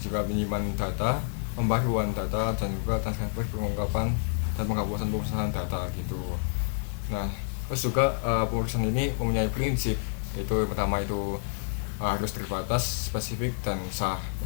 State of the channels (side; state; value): right; silent; digital silence